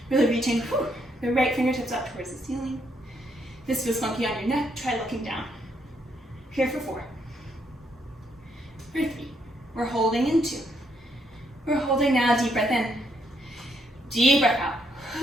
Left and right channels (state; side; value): normal; both; correlation 0.74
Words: Really reaching the right fingertips up towards the ceiling. If this feels funky on your neck, try looking down. Here for 4. For 3. We're holding in 2. We're holding now, deep breath in. Deep breath